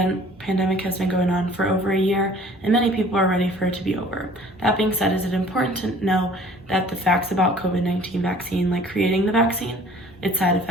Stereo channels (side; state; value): both; normal; correlation 0.51